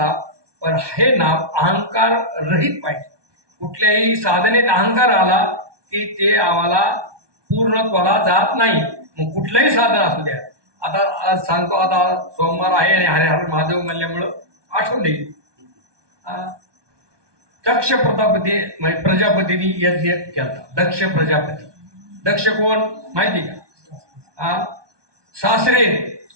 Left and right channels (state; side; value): late; left; 1.2 ms